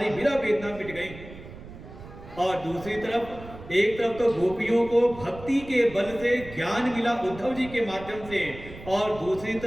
विरह वेदना मिट गई। और दूसरी तरफ एक तरफ तो गोपियों को भक्ति के बल से ज्ञान मिला उद्धव जी के माध्यम से, और दूसरी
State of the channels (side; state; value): right; noise; rumble, 15 dB below the sound